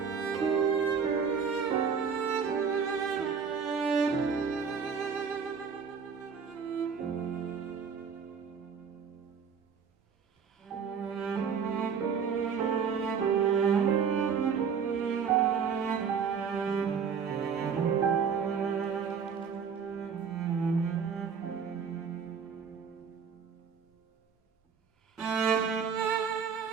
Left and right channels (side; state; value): left; quieter; 6.5 dB